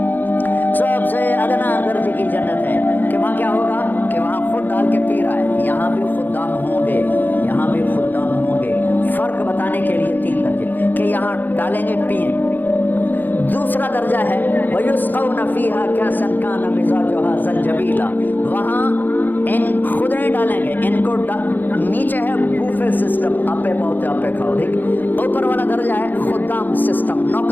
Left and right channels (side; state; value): right; late; 0.088 ms